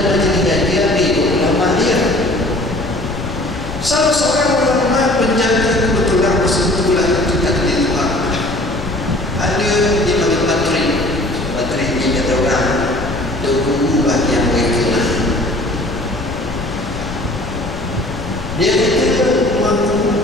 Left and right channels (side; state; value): left; noise; rumble, 10 dB below the sound